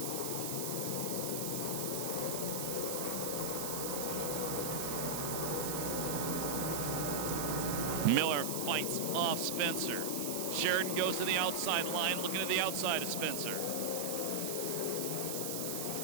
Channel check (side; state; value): right; noise; hiss, 3 dB below the sound